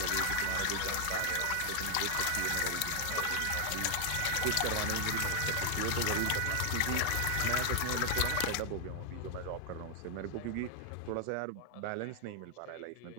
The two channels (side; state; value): both; different; correlation 0.00